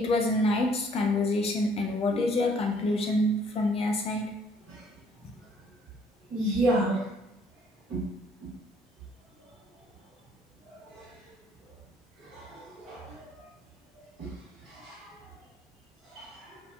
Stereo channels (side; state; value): both; normal; correlation 0.62